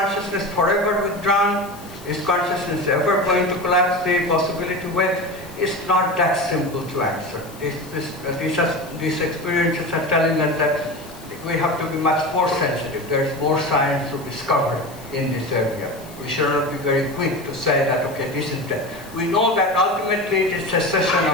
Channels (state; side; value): noise; left; hiss, 20 dB below the sound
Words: forever withdrawn? Is consciousness ever going to collapse the possibility wave? It's not that simple to answer. These experiences are telling us that we have to be much more sensitive. There is more science to discover in this area. We should not be very quick to say that, okay, this is death. We know that ultimately it is cessation